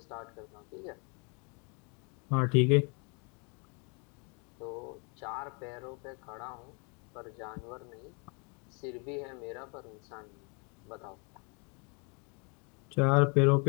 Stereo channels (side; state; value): right; quieter; 34.2 dB